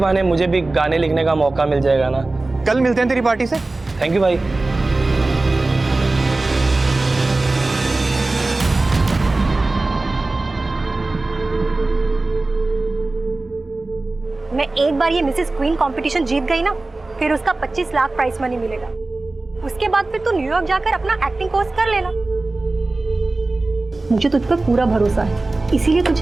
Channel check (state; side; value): quieter; left; 3.1 dB